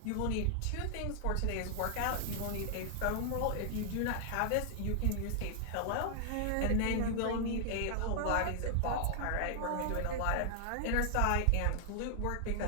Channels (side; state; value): both; different; correlation -0.01